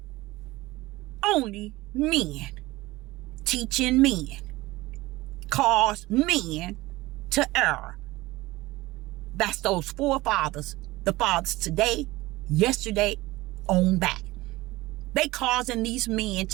Only men, teaching men, cause men to err. That's those forefathers, the fathers today, yesterday, on back. They causing these men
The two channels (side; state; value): left; quieter; 19.4 dB